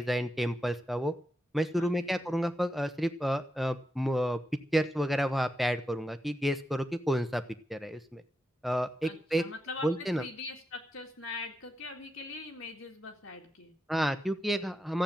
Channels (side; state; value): both; normal; correlation 0.87